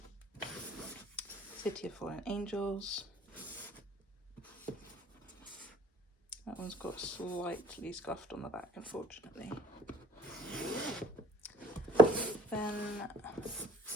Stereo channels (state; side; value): normal; both; correlation 0.55